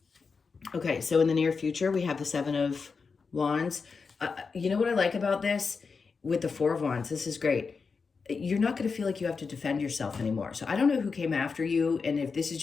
Okay, so in the near future, we have the Seven of Wands. You know what I like about this? With the Four of Wands, this is great. You're not going to feel like you have to defend yourself anymore. So I don't know who came after you, and if this is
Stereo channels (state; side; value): quieter; right; 5.0 dB